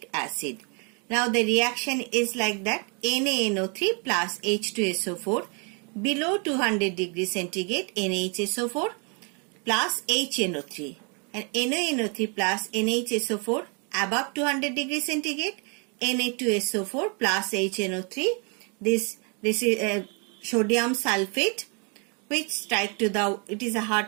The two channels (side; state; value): left; quieter; 35.3 dB